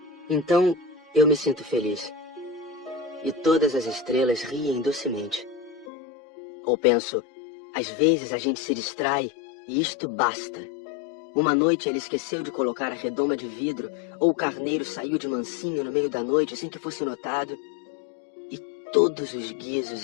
Então eu me sinto feliz. E todas as estrelas riem docemente. Ou penso, às vezes a gente se distrai e isto basta. Uma noite ele esqueceu de colocar a redoma de vidro, ou o carneiro saiu de mansinho no meio da noite sem que fosse notado. E todos os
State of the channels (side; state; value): right; drops out; at 5.9 s